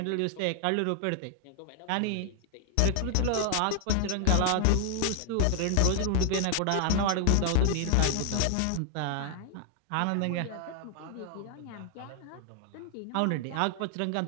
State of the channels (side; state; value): both; different; correlation 0.00